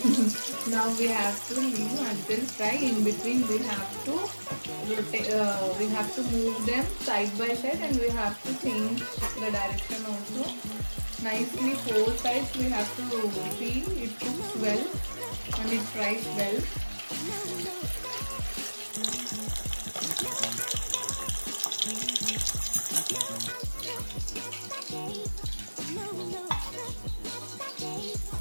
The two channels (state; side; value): inverted; both; correlation -1.00